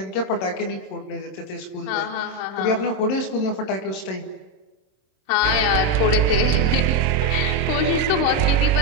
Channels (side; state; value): right; late; 26 ms